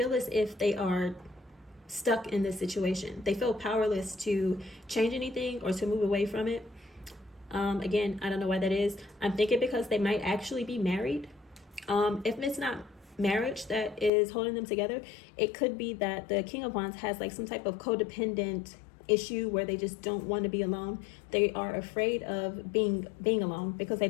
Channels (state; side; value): drops out; right; at 14.1 s